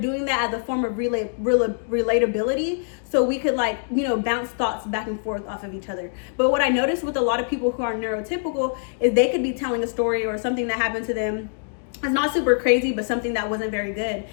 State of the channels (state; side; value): silent; right; digital silence